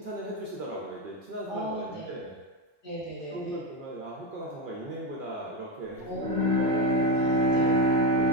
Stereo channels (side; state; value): both; normal; correlation 0.11